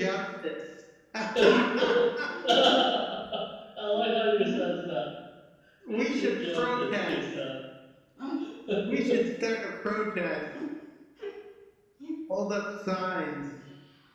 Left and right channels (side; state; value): both; identical; correlation 1.00